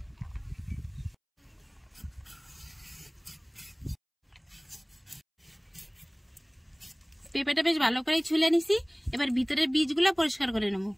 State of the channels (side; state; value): both; identical; correlation 1.00